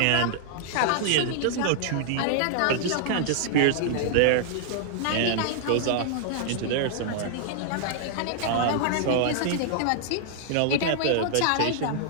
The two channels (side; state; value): both; different; correlation -0.01